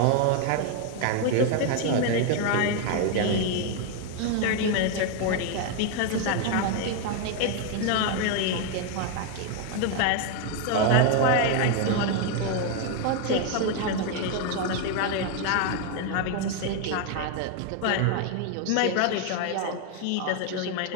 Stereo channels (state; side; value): different; both; correlation 0.01